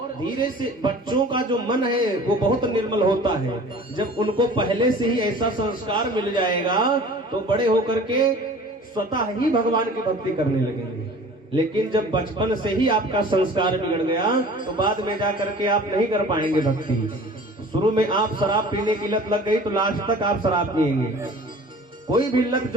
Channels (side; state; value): both; normal; correlation 0.44